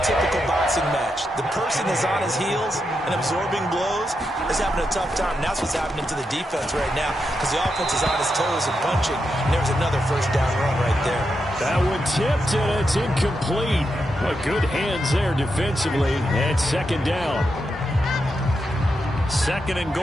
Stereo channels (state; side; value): normal; both; correlation 0.85